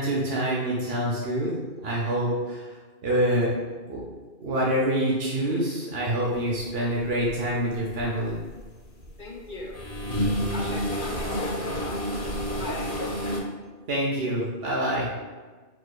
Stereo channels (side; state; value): left; late; 2.4 ms